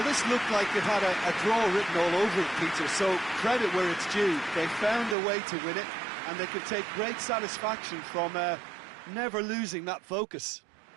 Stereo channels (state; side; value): drops out; left; at 5.2 s